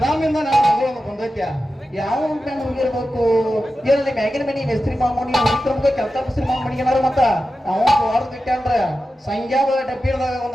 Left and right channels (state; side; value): normal; both; correlation 0.92